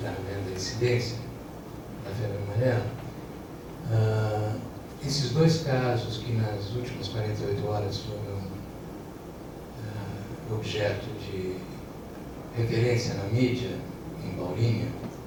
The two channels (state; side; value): identical; both; correlation 1.00